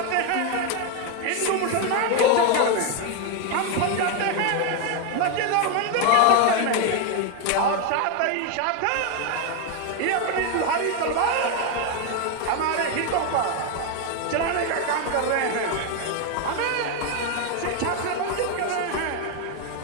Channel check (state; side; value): different; both; correlation 0.01